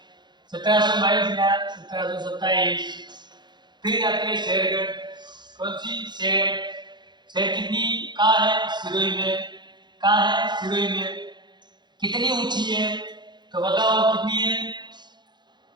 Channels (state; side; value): late; left; 0.21 ms